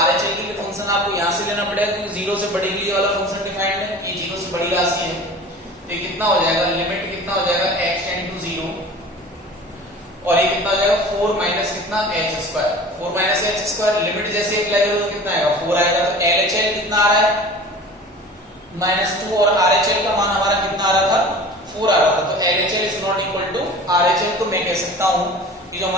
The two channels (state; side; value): normal; both; correlation 0.40